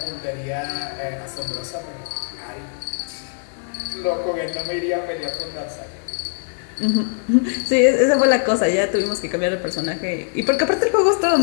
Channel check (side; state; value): right; silent; 64 dB below the other